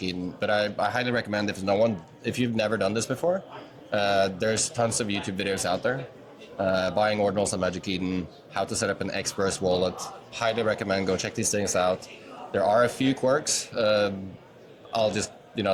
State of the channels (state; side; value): identical; both; correlation 1.00